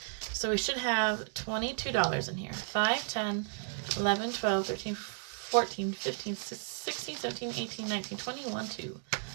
So we should have $22 in here. 5, 10, 11, 12, 13, 14, 15, 16, 17, 18, 19, 21, 2.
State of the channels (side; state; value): left; silent; 55 dB below the other